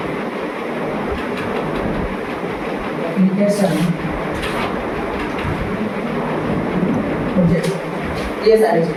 application, ये सारी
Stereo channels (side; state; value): both; identical; correlation 1.00